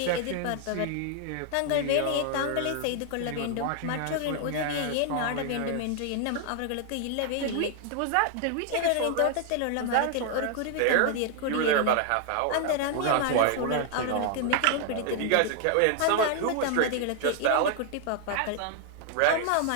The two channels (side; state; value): both; different; correlation 0.00